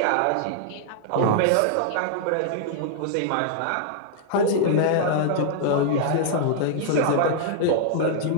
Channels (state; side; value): different; both; correlation -0.01